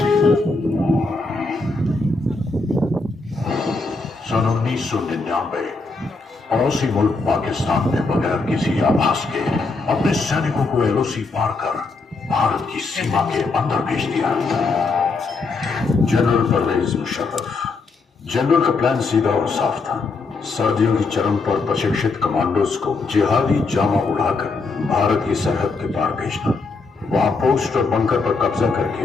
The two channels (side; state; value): right; quieter; 3.9 dB